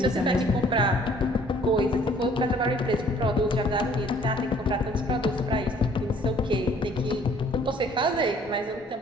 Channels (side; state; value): both; normal; correlation 0.58